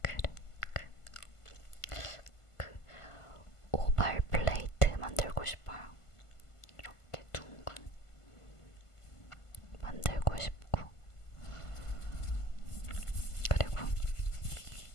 그 오발 플레이트 만들고 싶어요. 이렇게 둥근 만들고 싶고, 그리고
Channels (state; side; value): late; right; 1.5 ms